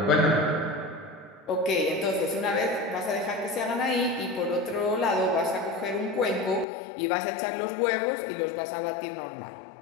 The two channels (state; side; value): drops out; right; at 6.7 s